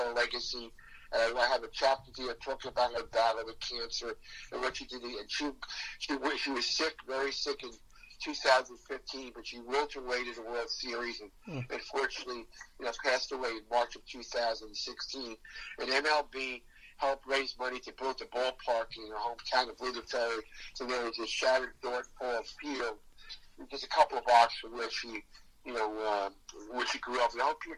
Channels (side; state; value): both; identical; correlation 1.00